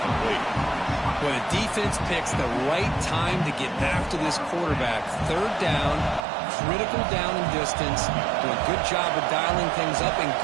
When a defense picks the right time to get after this quarterback, third down, critical down and distance, do a good job of dialing things up, and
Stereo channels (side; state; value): left; drops out; at 6.2 s